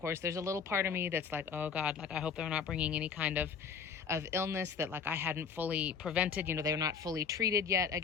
there's a little part of me that's like, oh God, like I hope they're not bringing any kind of illness that like I hadn't fully prevented. You know, they're not fully treated yet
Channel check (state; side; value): quieter; right; 6.3 dB